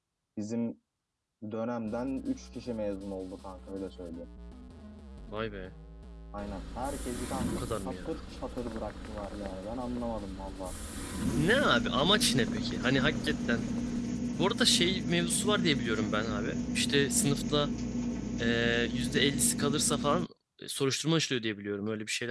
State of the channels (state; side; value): identical; both; correlation 1.00